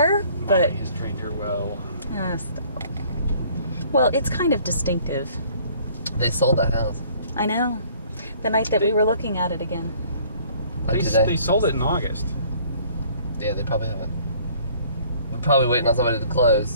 but... Molly has trained her well. Stop. Well, it's kind of distinctive. They sold that house. I know. The night that we were looking at it again. Like today. They sold it in August. Yeah, they probably haven't. We're probably waiting on somebody to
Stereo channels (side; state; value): both; inverted; correlation -0.56